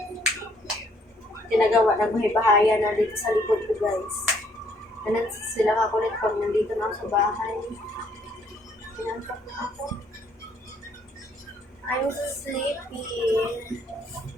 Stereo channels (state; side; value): normal; both; correlation 0.66